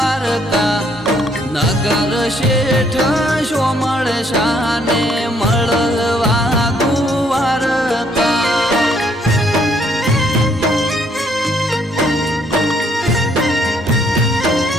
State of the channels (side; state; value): both; normal; correlation 0.68